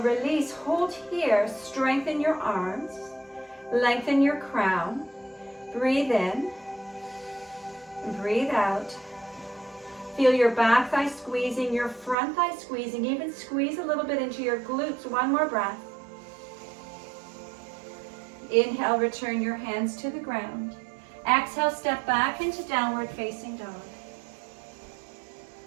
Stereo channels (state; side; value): drops out; left; at 12.2 s